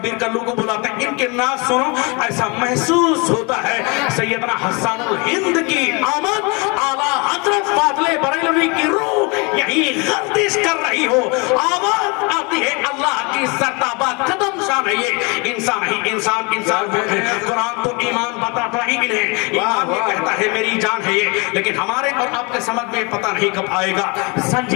कल्लू को बुलाते हैं, इनके नात सुनो ऐसा महसूस होता है सैयदना हस्सानुल हिंद की आमद, आला हजरत फादले बरेलवी की रूह यही गर्दिश कर रही हो, आवाज आती है अल्लाह की सरताबा कदम शान है ये। इंसान ही इंसान कुरान तो ईमान बताता ही इन्हें, ईमान ये कहता है मेरी जान है ये। लेकिन हमारे और आपके समझ में पता नहीं कब आएगा।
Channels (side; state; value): right; quieter; 29.7 dB